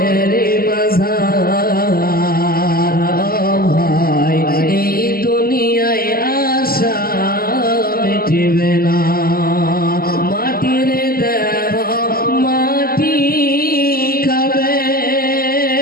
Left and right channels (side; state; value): right; late; 0.43 ms